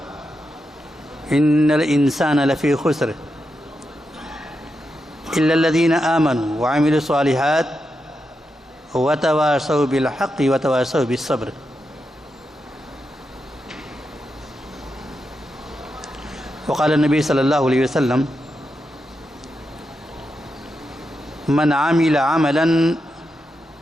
ان الانسان لفی خسر الا الذین آمنوا وعملوا الصالحات وتواصوا بالحق وتواصوا بالصبر۔ وقال النبی صلی اللہ علیہ وسلم من عمل عملا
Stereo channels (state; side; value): normal; both; correlation 0.86